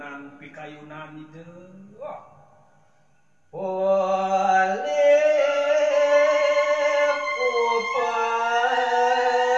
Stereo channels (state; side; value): identical; both; correlation 1.00